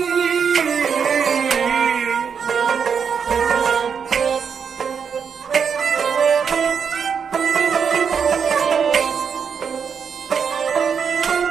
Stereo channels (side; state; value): left; quieter; 6.7 dB